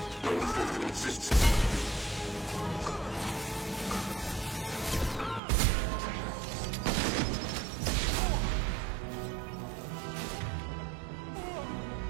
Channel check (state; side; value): drops out; left; at 5.4 s